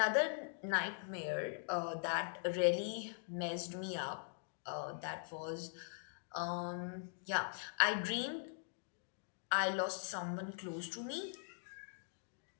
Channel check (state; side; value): silent; right; digital silence